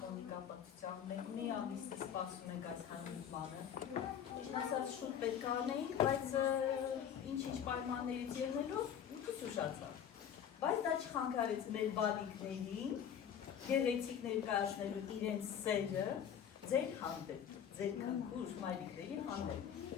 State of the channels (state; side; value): quieter; right; 8.7 dB